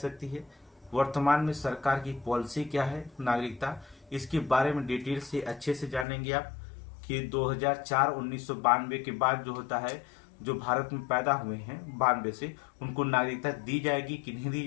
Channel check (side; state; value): right; drops out; at 6.1 s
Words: है, वर्तमान में सरकार की पॉलिसी क्या है नागरिकता, इसके बारे में डिटेल से अच्छे से जानेंगे आप कि 1992 के बाद जो होता है जो भारत में पैदा हुए हैं 92 से, उनको नागरिकता दी जाएगी कि नहीं दी